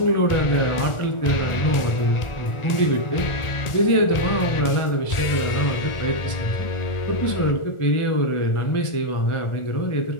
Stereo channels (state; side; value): late; right; 1.4 ms